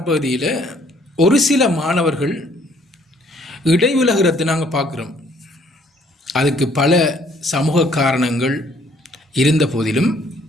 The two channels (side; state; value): both; normal; correlation 0.63